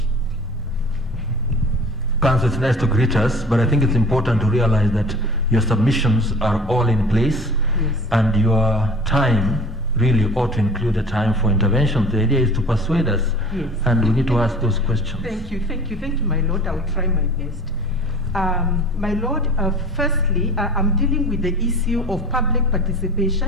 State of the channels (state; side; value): normal; both; correlation 0.42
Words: Council, it's nice to greet us, but I think it's important to realize that your submissions are all in place, yes, and your time really ought to include a time for intervention. The idea is to persuade us, yes, and we need to ask those questions. Thank you, my lord. I'll try my best. My lord, firstly, I'm dealing with the issue of public